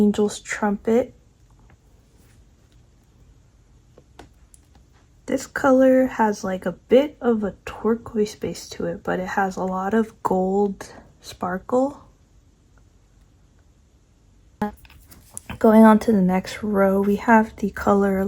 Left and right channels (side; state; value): both; identical; correlation 1.00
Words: Trumpet. This color has like a bit of a turquoise base to it, but it has a lot of gold sparkle. Going on to the next row, we have the color